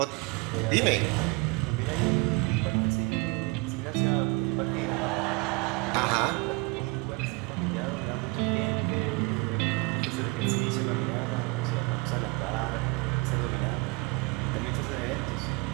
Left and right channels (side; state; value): left; quieter; 27.8 dB